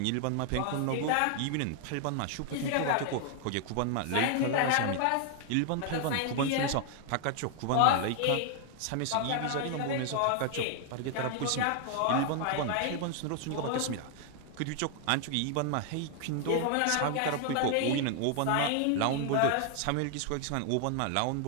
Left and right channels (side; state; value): both; different; correlation 0.00